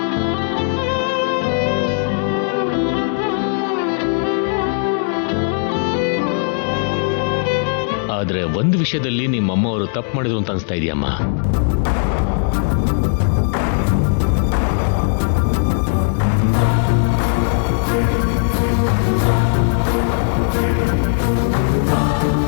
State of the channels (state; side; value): silent; right; 65 dB below the other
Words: ಆದ್ರೆ ಒಂದು ವಿಷಯದಲ್ಲಿ ನಿಮ್ಮಮ್ಮವರು ತಪ್ಪು ಮಾಡಿದ್ರು ಅಂತ ಅನಿಸ್ತಾ ಇದೆಯಮ್ಮ.